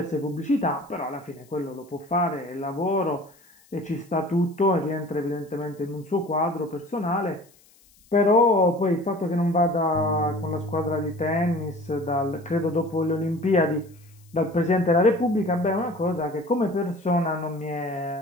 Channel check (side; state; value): left; noise; hiss, 30 dB below the sound